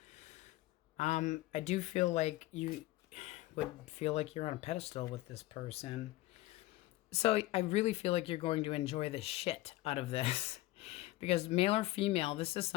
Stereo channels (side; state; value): right; quieter; 17.9 dB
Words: I do feel like you would feel like you're on a pedestal with this person. So I really feel like you're going to enjoy the shit out of this. Because male or female, this is